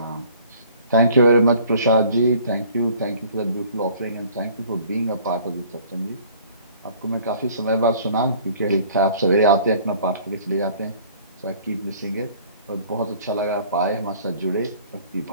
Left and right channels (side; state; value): both; inverted; correlation -0.53